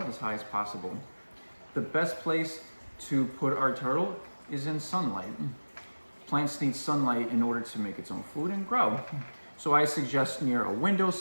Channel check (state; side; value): inverted; both; correlation -1.00